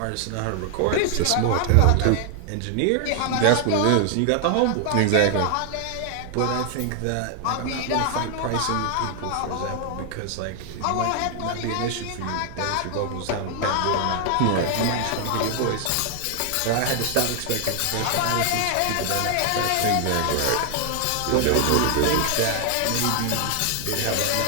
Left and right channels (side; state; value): both; different; correlation 0.00